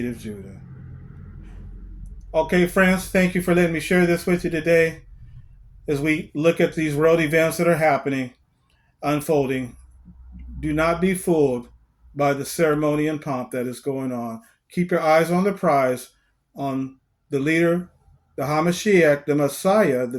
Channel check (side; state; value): both; identical; correlation 1.00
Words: of Judah. Okay, friends, thank you for letting me share this with you today as we look at these world events that are happening, unfolding. Do not be fooled by the ceremony and pomp that is going on. Keep your eyes on the prize, on the leader, the Hamashiach, the Messiah,